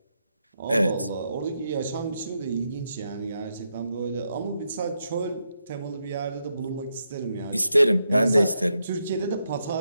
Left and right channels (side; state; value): both; inverted; correlation -0.83